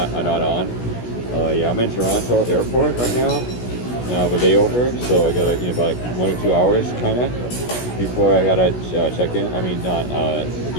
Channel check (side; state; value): right; late; 16 ms